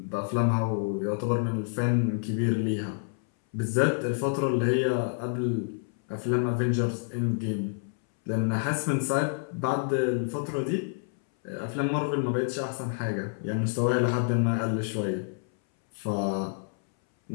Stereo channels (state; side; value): silent; right; 59 dB below the other